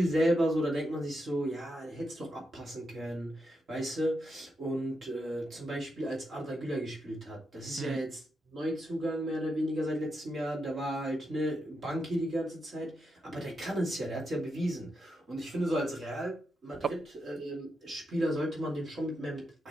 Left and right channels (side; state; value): both; normal; correlation 0.84